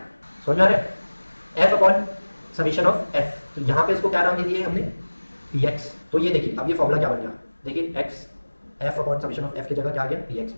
समझ में आ रहा है, f upon summation of f, तो यहाँ पे इसको क्या नाम दे दिए हमने, px। तो ये देखिए अब ये फॉर्मूला क्या बन गया, देखिए x f upon summation of f की जगह क्या आ गया, px,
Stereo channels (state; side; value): inverted; both; correlation -1.00